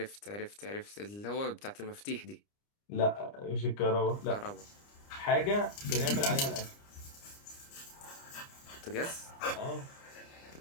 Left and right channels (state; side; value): late; right; 29 ms